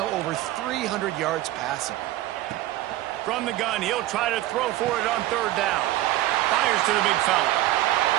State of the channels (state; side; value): quieter; left; 15.5 dB